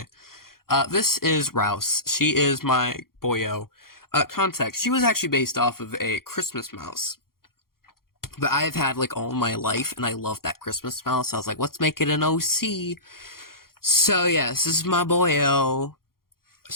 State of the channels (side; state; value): right; late; 0.92 ms